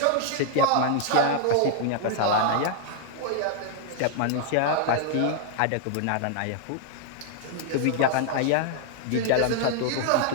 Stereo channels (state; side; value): different; both; correlation -0.01